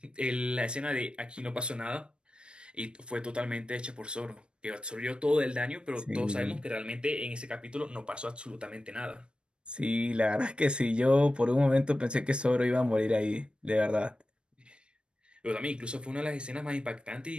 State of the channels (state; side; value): late; left; 0.055 ms